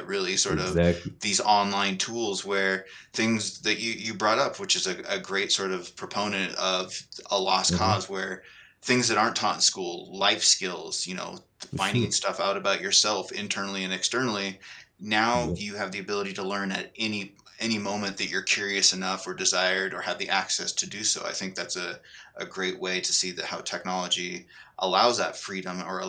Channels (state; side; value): identical; both; correlation 1.00